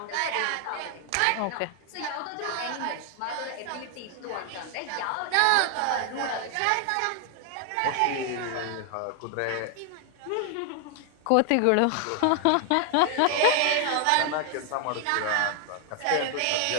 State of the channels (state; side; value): different; both; correlation 0.00